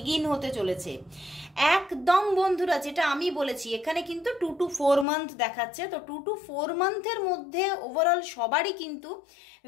হতে চলেছে একদম বন্ধুরা, যেটা আমি বলেছি এখানে কিন্তু 2 to 4 মান্থ দেখাচ্ছে। তো 2 to 4 মান্থের মধ্যে ওভারঅল সবারই কিন্তু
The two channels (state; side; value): drops out; right; at 5.1 s